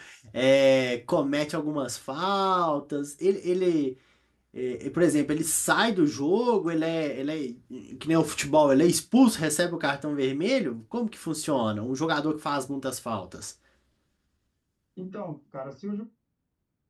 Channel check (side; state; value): both; identical; correlation 1.00